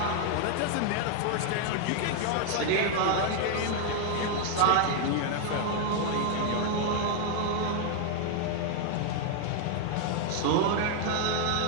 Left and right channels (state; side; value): different; both; correlation 0.00